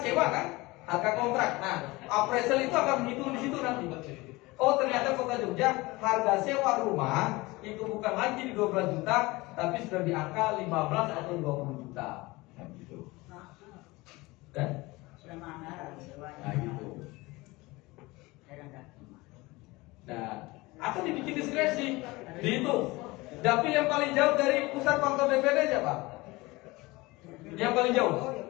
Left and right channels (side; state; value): right; quieter; 22.0 dB